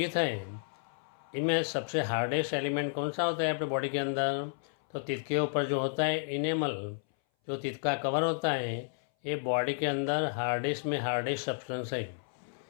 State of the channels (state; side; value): silent; right; 57 dB below the other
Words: है, इनमें सबसे हार्डेस्ट एलिमेंट कौन सा होता है अपने बॉडी के अंदर? तो टीथ के ऊपर जो होता है इनेमल, जो टीथ का कवर होता है, ये बॉडी के अंदर हार्डेस्ट में हार्डेस्ट सब्सटेंस है।